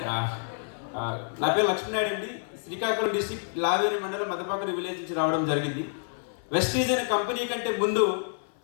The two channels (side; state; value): right; silent; 58 dB below the other